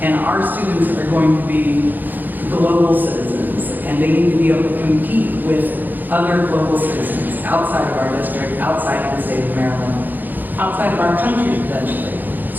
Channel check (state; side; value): late; left; 0.087 ms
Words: And our students are going to be global citizens, and they need to be able to compete with other global citizens outside of our district, outside of the state of Maryland, outside of our country potentially.